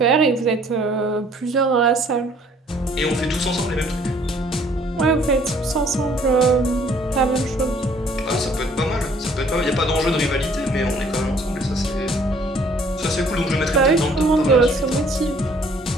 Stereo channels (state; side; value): normal; both; correlation 0.59